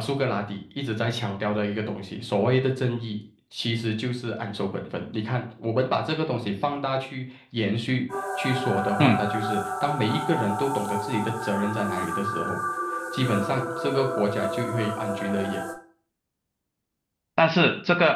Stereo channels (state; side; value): identical; both; correlation 1.00